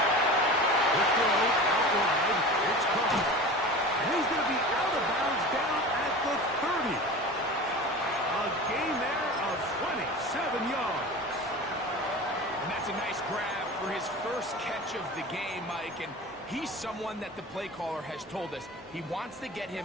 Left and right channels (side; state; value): both; normal; correlation 0.34